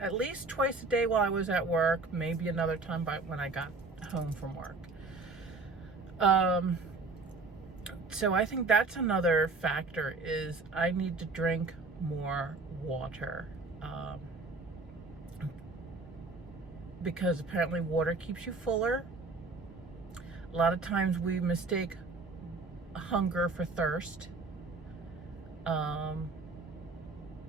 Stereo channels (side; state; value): left; quieter; 3.6 dB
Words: at least twice a day while I was at work, maybe another time when I got home from work. So I think that's another factor, is I need to drink more water. Because apparently water keeps you fuller. A lot of times we mistake hunger for thirst.